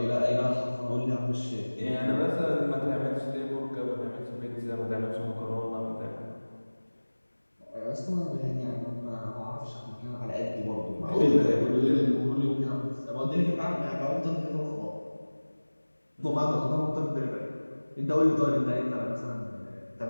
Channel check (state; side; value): inverted; both; correlation -1.00